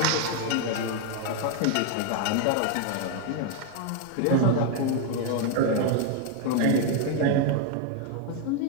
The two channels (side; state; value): both; different; correlation 0.00